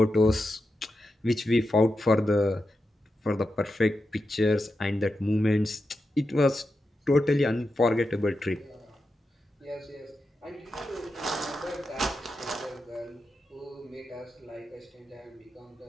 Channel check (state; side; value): normal; both; correlation 0.89